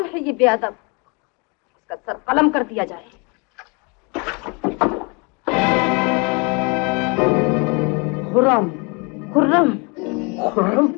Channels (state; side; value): quieter; right; 31.3 dB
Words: है ये बेअदब? इसका सर कलम कर दिया जाए। खुर्रम। खुर्रम। खुर्रम,